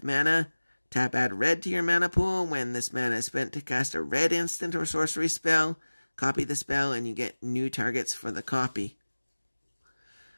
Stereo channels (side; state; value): both; inverted; correlation -1.00